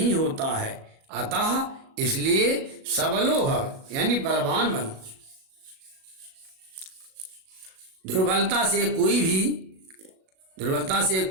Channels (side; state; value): left; late; 37 ms